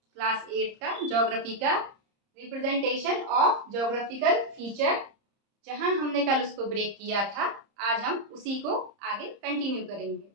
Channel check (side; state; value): left; late; 30 ms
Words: 8 का ज्योग्राफी का, रिप्रेजेंटेशन ऑफ ज्योग्राफिकल फीचर, जहां हमने कल उसको ब्रेक किया था, आज हम उसी को आगे कंटिन्यू करेंगे।